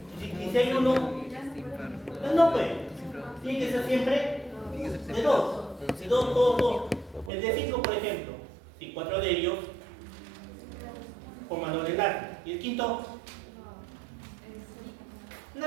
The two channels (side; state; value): left; drops out; at 7.3 s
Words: Y si hay uno, no pues. Tiene que ser siempre de dos. De dos. El de 5, por ejemplo, si 4 de ellos forman doble enlace. Y el quinto,